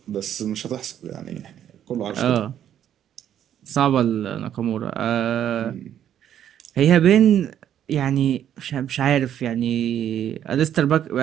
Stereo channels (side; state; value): left; quieter; 10.2 dB